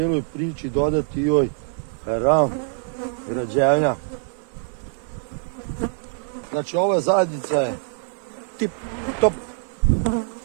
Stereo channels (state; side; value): silent; left; digital silence